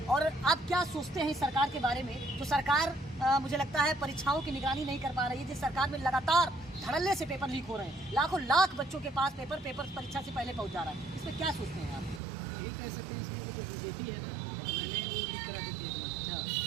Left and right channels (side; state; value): left; drops out; at 12.2 s